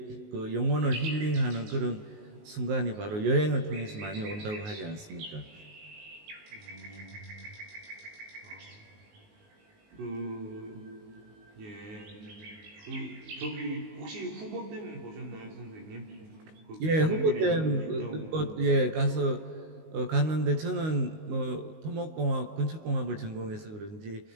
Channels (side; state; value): left; late; 19 ms